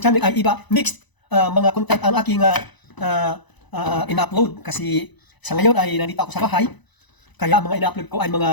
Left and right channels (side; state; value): right; late; 1.0 ms